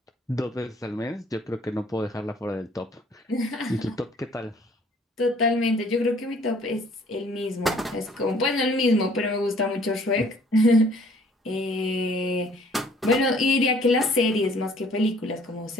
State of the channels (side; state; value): both; normal; correlation 0.57